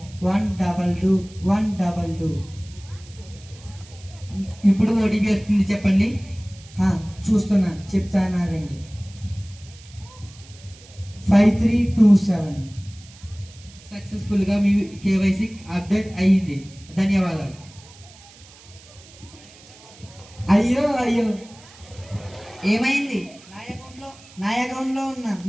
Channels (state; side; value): noise; right; hiss, 22 dB below the sound